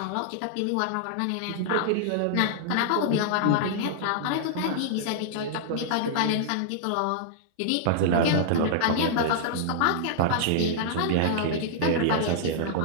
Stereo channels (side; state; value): both; different; correlation -0.01